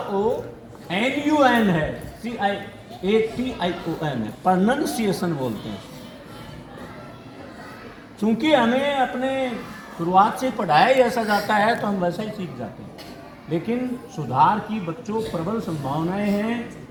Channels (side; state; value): both; identical; correlation 1.00